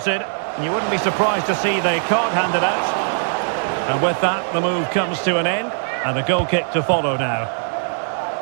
And you wouldn't be surprised to see the card handed out. And with that, the move comes to an end. And a goal kick to follow now.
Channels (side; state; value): left; silent; 65 dB below the other